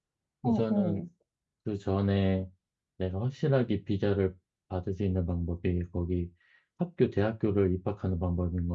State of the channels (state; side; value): identical; both; correlation 1.00